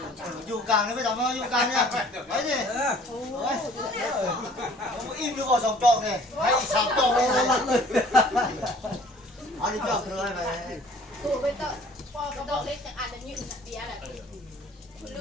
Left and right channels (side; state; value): both; normal; correlation 0.53